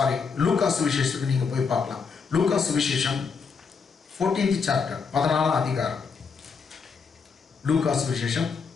லூக்கா சுவிசேஷத்துக்கு நீங்க போய் பார்க்கலாம். லூக்கா சுவிசேஷம் 14th chapter 14ஆம் அதிகாரம். லூக்கா சுவிசேஷம்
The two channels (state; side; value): quieter; right; 5.5 dB